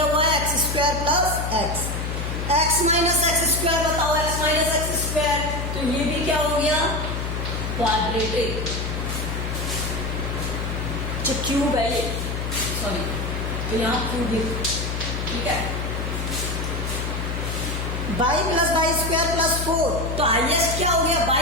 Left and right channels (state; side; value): noise; left; hum, 3 dB below the sound